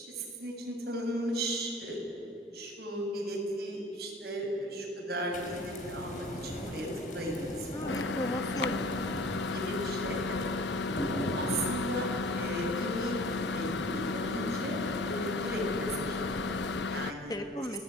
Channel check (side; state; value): both; normal; correlation 0.46